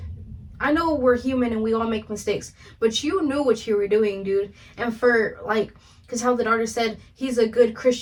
I know we're human and we all make mistakes, but you knew what you were doing, dude. And for, like, because how the daughter said he's a good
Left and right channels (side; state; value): both; identical; correlation 1.00